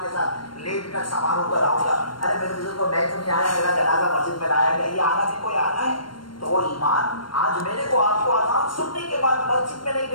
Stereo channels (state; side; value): late; right; 0.72 ms